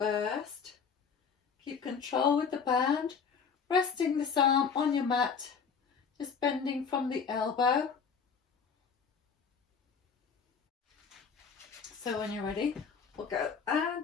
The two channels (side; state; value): right; quieter; 6.1 dB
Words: Keep control with the band. Resting this arm on your mat. Just bending from the elbow. So when you're ready, we'll go